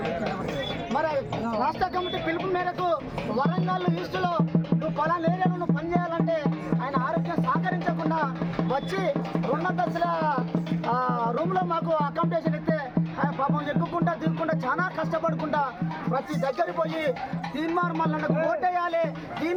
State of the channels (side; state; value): both; identical; correlation 1.00